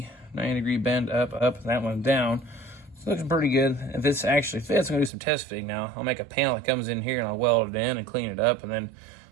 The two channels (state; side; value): drops out; left; at 5.1 s